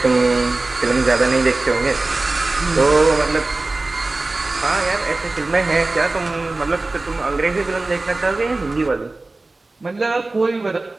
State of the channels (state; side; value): quieter; left; 3.2 dB